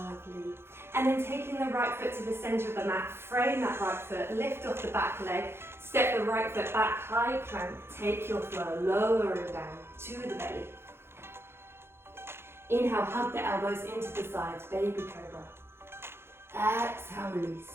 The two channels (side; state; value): left; late; 0.12 ms